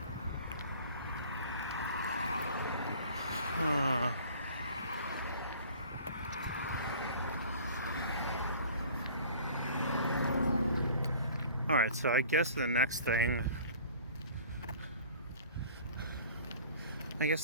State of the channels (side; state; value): both; inverted; correlation -0.48